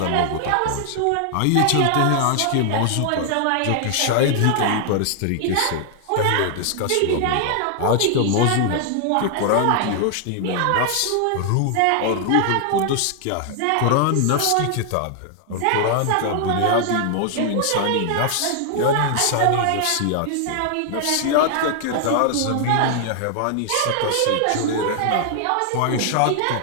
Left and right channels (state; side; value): different; both; correlation 0.00